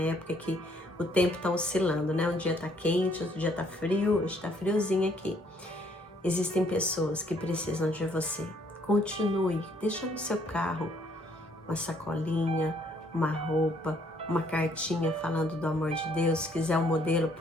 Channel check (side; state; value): both; normal; correlation 0.66